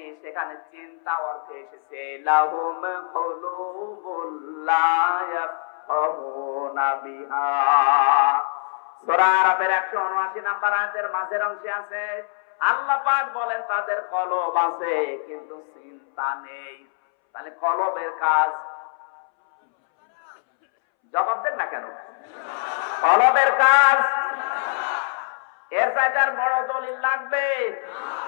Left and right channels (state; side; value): silent; right; 63 dB below the other